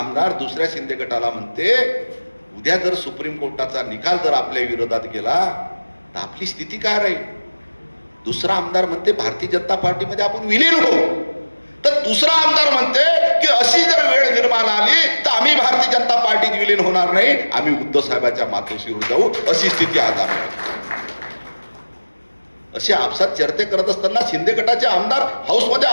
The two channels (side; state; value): both; inverted; correlation -1.00